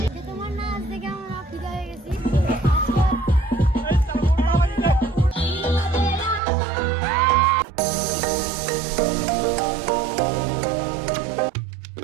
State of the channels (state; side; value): drops out; left; at 6.4 s